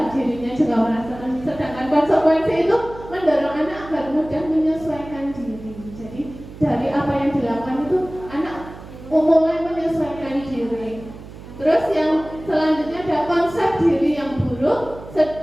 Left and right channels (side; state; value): right; noise; hum, 15 dB below the sound